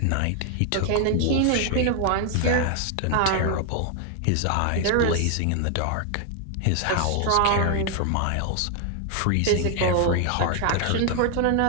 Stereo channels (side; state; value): both; different; correlation 0.00